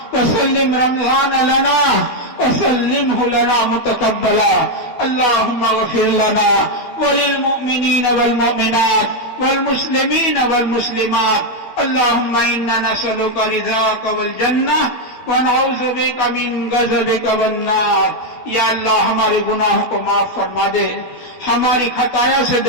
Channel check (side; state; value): right; late; 12 ms